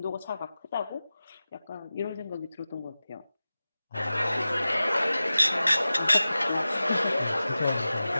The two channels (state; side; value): inverted; both; correlation -0.96